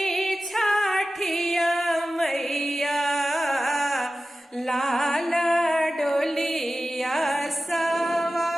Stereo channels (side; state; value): both; normal; correlation 0.95